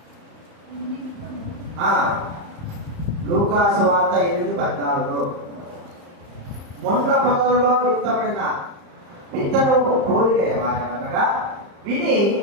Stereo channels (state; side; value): late; left; 35 ms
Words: లూకా సువార్త 8:14. ముండ్ల పొదలలో విత్తబడిన విత్తనము పోలిక అనగా విని